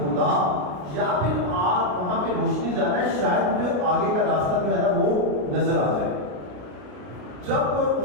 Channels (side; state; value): left; late; 33 ms